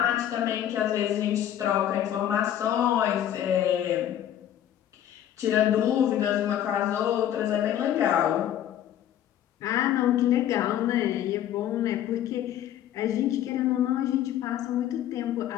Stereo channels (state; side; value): quieter; right; 11.1 dB